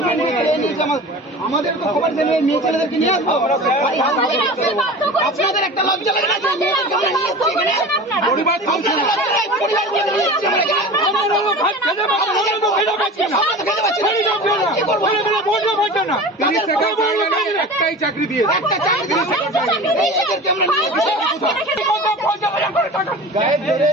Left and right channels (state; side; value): normal; both; correlation 0.35